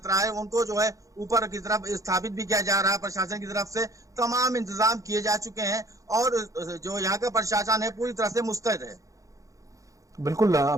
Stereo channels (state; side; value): late; left; 0.16 ms